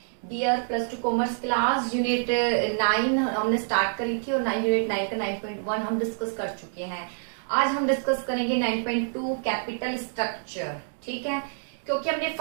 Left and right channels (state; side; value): silent; left; digital silence